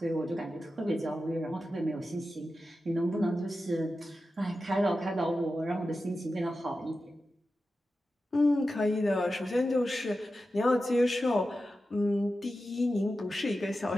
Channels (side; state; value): both; normal; correlation 0.92